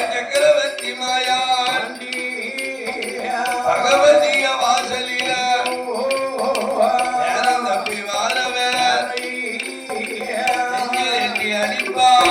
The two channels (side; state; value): both; identical; correlation 1.00